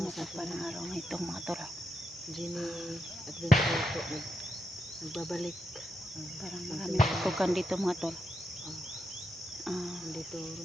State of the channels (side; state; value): both; normal; correlation 0.84